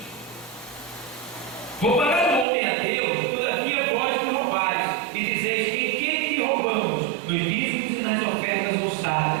vou pagar o homem a Deus, todavia vós me roubais, e dizeis: em que te roubamos? Nos dízimos e nas ofertas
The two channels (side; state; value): left; drops out; at 2.5 s